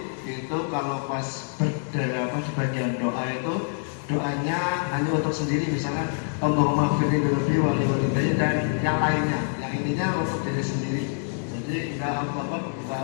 itu kalau pas di bagian doa itu doanya hanya untuk sendiri, misalnya Allahumma firli dhunubi wali walidayya dan yang lainnya, yang intinya untuk diri sendiri. Jadi enggak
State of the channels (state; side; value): silent; right; digital silence